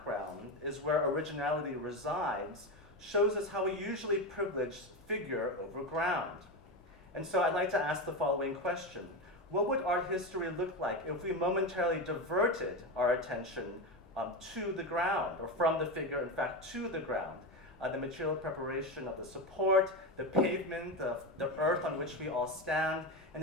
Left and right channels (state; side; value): normal; both; correlation 0.17